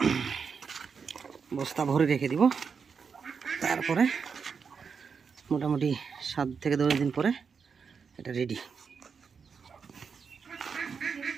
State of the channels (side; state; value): left; quieter; 5.9 dB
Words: বস্তা ভরে রেখে দিব। তারপরে মোটামুটি 7 থেকে 10 দিন পরে এটা রেডি,